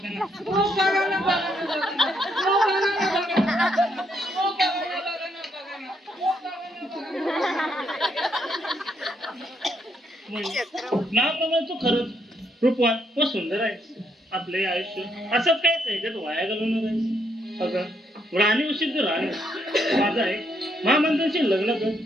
नावाप्रमाणे तू खरंच रूपवान व सुंदर आहे आपले आयुष्य असंच काय त्याच्यात वाया घालवणार आहे अगं राणी उशीर तर राणी माझा आहे महामंत्र्यांशी लग्न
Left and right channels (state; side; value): normal; both; correlation 0.75